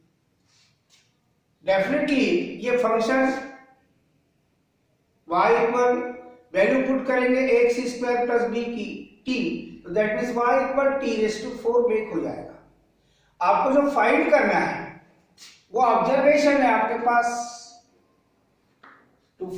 definitely ये function y equal value put करेंगे ax स्क्वायर प्लस बी की t, तो that means y equal t raise to 4 make हो जाएगा। आपको जो फाइंड करना है वो ऑब्जर्वेशन है आपके पास, to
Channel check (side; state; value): both; identical; correlation 1.00